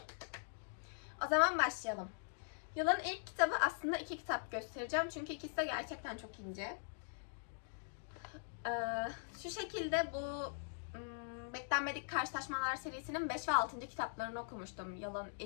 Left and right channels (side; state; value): right; silent; digital silence